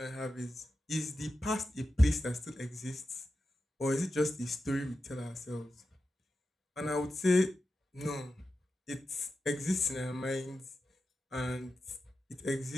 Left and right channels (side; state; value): both; normal; correlation 0.91